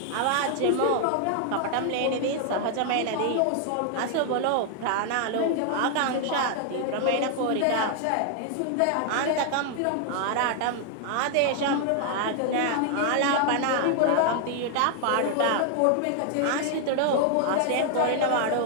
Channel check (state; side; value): different; both; correlation 0.00